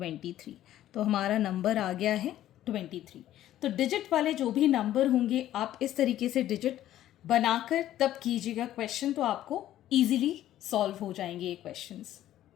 तो हमारा नंबर आ गया है 23। तो डिजिट वाले जो भी नंबर होंगे आप इस तरीके से डिजिट बनाकर तब कीजिएगा क्वेश्चन, तो आपको ईजिली सॉल्व हो जाएंगे ये questions.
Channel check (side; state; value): right; quieter; 12.9 dB